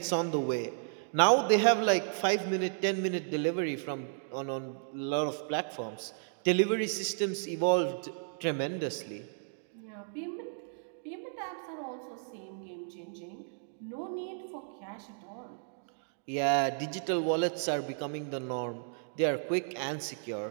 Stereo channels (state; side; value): silent; left; digital silence